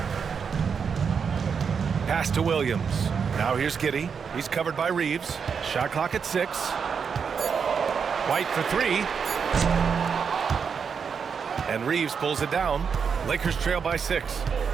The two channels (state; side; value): quieter; left; 6.3 dB